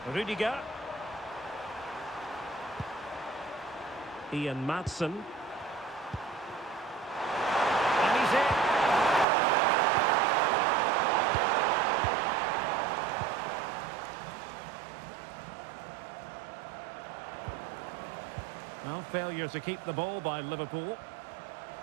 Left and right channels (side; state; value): left; drops out; at 9.2 s